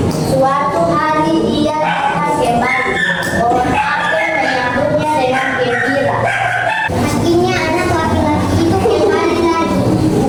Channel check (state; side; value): identical; both; correlation 1.00